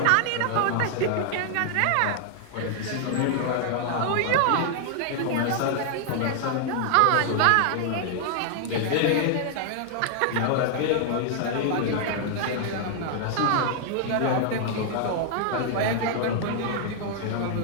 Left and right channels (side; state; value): both; different; correlation 0.00